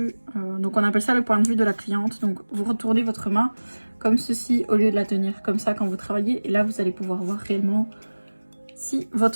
donc on appelle ça le point de vue de la cliente. Donc vous retournez votre main comme ceci au lieu de la tenir comme ça quand vous travaillez. Et là vous allez pouvoir voir réellement si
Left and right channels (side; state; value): both; inverted; correlation -1.00